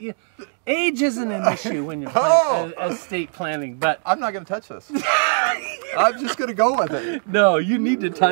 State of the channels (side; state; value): left; silent; digital silence